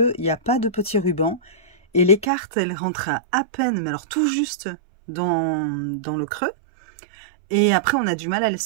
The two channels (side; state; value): left; drops out; at 2.3 s